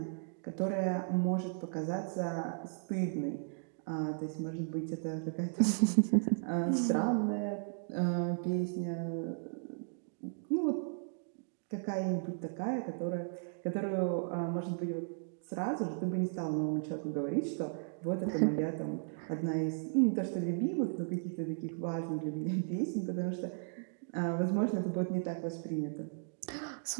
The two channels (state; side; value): silent; left; digital silence